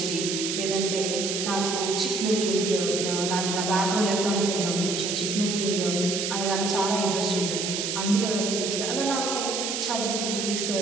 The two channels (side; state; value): right; noise; hiss, 2 dB below the sound